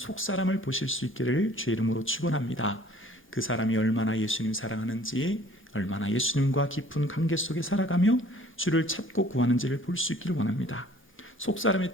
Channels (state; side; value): normal; both; correlation 0.54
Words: 보실 수 있기를 주의 이름으로 축원합니다. 그 사람이 얼마나 예수님 사랑하는지, 얼마나 예수님과 깊은 관계 속에 살아가며 주를 찾고 구하는지를 볼 수 있기를 원합니다. 속사람의